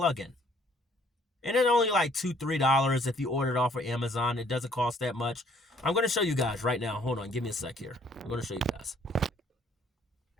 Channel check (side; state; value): both; normal; correlation 0.62